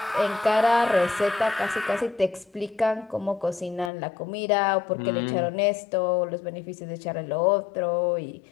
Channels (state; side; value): drops out; right; at 3.9 s